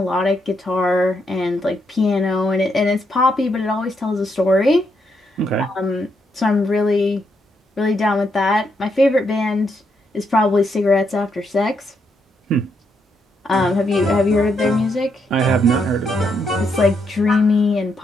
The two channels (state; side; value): normal; both; correlation 0.78